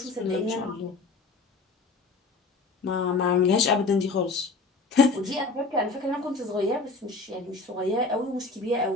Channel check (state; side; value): quieter; right; 3.7 dB